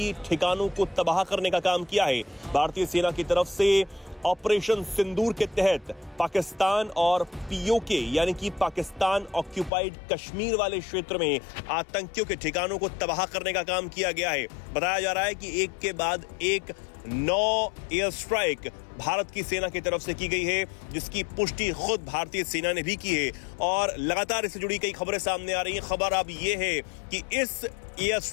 ठिकानों को तबाह करने का काम किया है। भारतीय सेना की तरफ से ऑपरेशन सिंदूर के तहत पाकिस्तान और पीओके यानी कि पाकिस्तान ऑक्यूपाइड कश्मीर वाले क्षेत्र में आतंकियों के ठिकानों को तबाह करने का काम किया गया है। बताया जा रहा है कि एक के बाद एक 9 एयर स्ट्राइक भारत की सेना की तरफ से की गई है, जिसकी पुष्टि खुद भारतीय सेना ने भी की है और लगातार इससे जुड़ी कई खबरें सामने आ रही हैं। खबर अब यह है कि इस एयर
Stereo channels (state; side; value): drops out; right; at 9.7 s